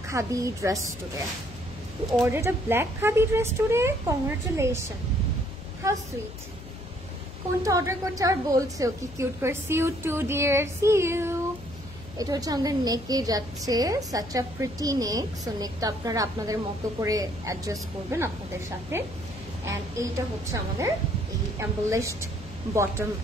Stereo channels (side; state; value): left; noise; hum, 16 dB below the sound